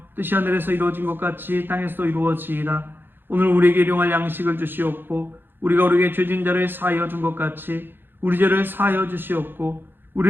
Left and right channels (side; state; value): left; late; 0.10 ms